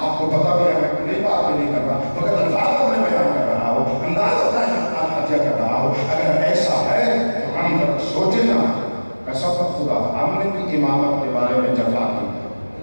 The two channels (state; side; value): inverted; both; correlation -1.00